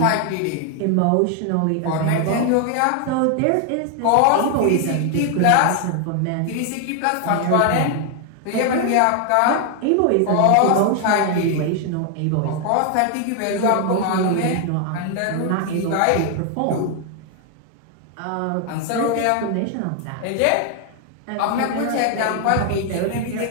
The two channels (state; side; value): different; both; correlation 0.00